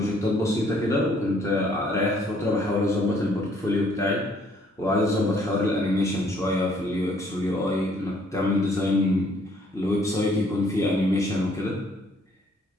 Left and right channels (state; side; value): normal; both; correlation 0.63